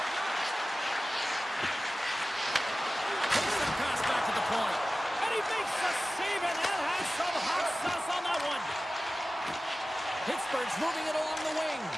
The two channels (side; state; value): both; normal; correlation 0.96